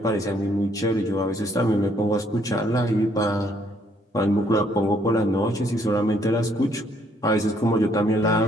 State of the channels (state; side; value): normal; both; correlation 0.67